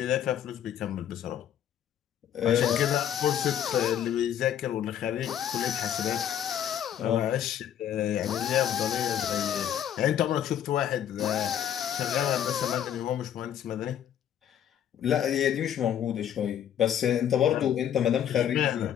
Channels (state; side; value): quieter; right; 10.0 dB